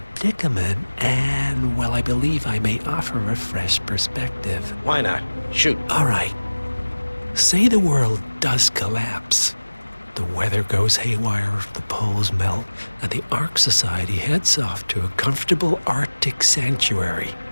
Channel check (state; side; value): inverted; both; correlation -1.00